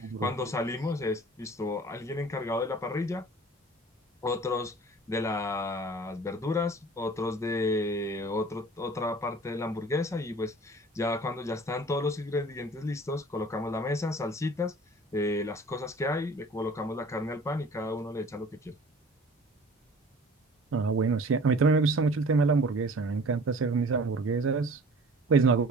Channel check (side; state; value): both; normal; correlation 0.46